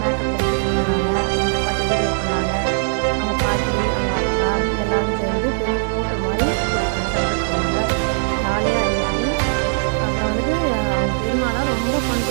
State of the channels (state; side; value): silent; left; digital silence